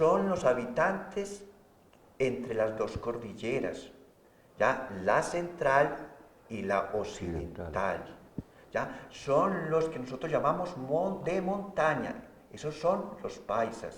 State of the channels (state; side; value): identical; both; correlation 1.00